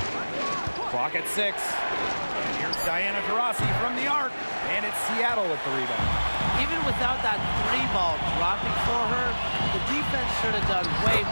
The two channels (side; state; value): both; inverted; correlation -1.00